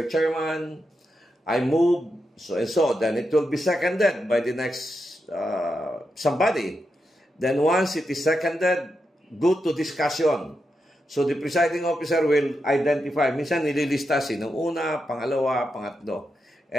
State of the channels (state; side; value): normal; both; correlation 0.86